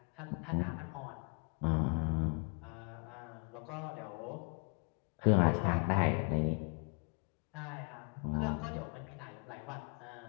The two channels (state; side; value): quieter; right; 37.9 dB